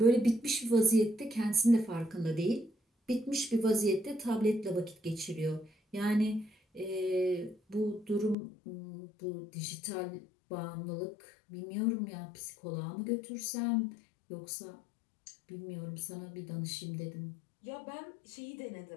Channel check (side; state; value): right; drops out; at 8.3 s